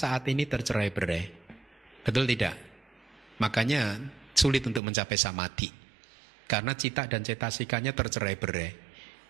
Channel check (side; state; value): left; drops out; at 4.8 s